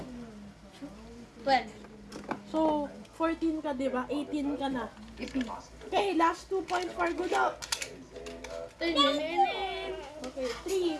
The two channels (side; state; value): both; identical; correlation 1.00